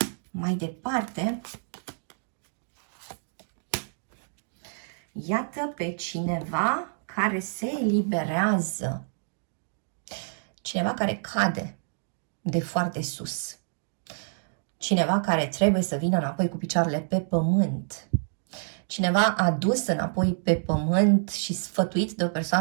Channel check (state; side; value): silent; left; digital silence